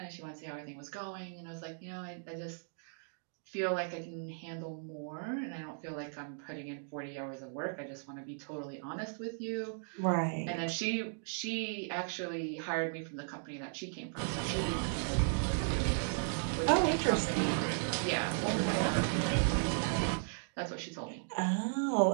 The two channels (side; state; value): left; silent; digital silence